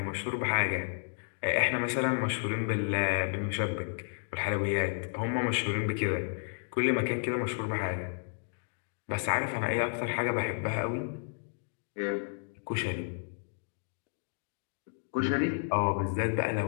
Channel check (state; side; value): silent; right; digital silence